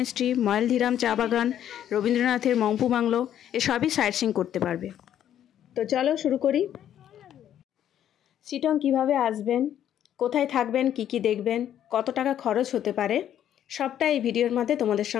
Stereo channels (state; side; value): quieter; right; 10.6 dB